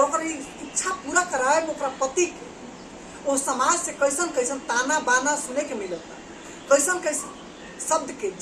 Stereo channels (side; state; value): both; identical; correlation 1.00